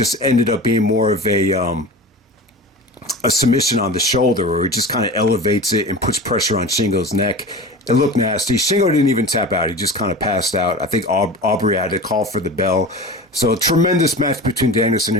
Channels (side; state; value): both; normal; correlation 0.33